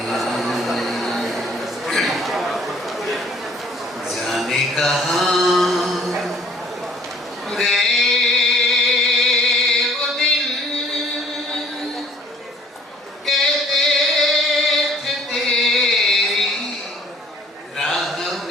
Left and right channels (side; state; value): both; normal; correlation 0.55